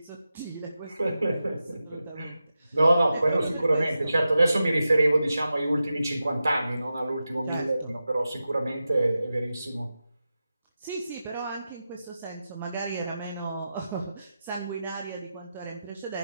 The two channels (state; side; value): inverted; both; correlation -0.91